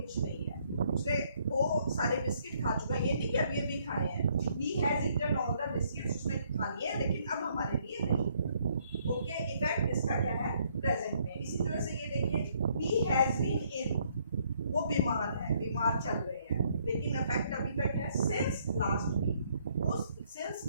नहीं है। उसने वो सारे बिस्किट खा चुका है, ये नहीं कि अभी अभी खाए हैं। He has eaten all the biscuits, उसने खा लिए हैं लेकिन अब हमारे लिए नहीं। ओके, इफेक्ट इसका क्या है, प्रेजेंट में। इसी तरह से ये देखिए, ही हैज बीन इल, वो बीमार है, बीमार चल रहे हैं, लेकिन इफेक्ट अभी तक है सिंस लास्ट वीक, वो सिंस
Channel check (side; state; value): both; inverted; correlation -0.68